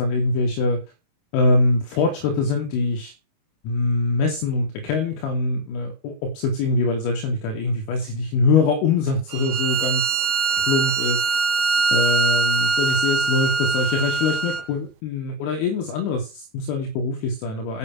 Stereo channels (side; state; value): right; late; 19 ms